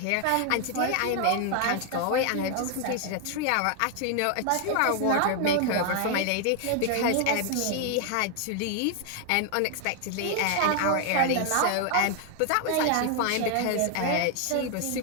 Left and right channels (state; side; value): different; both; correlation 0.00